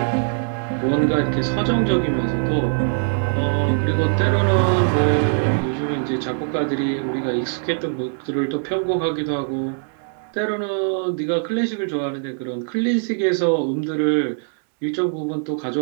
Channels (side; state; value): left; silent; digital silence